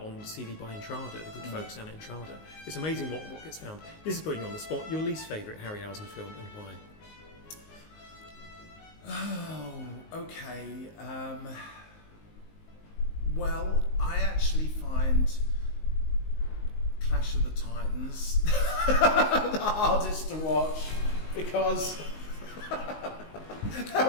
CD by Entrada, the good folks down at Entrada. It's amazing what gets found. This is putting you on the spot. Your least favourite Harryhausen film and why? Oh, okay. Well, I actually find Clash of the Titans the hardest to watch because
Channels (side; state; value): right; late; 19 ms